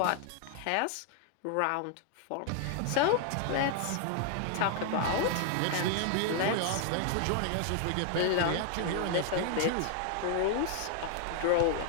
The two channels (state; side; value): different; both; correlation 0.00